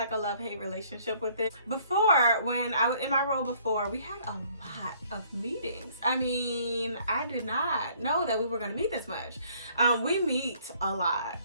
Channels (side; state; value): both; inverted; correlation -0.61